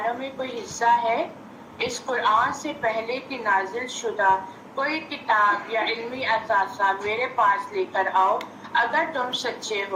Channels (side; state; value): both; identical; correlation 1.00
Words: میں کوئی حصہ ہے. اس قرآن سے پہلے کی نازل شدہ کوئی کتاب یا علمی اثاثہ میرے پاس لے کر آؤ اگر تم سچے